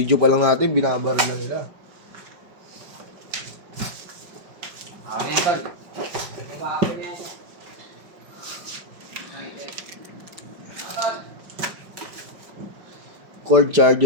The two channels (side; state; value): left; late; 5.3 ms